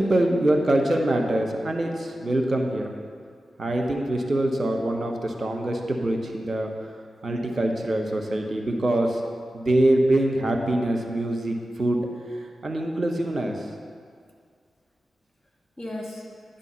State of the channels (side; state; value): both; normal; correlation 0.93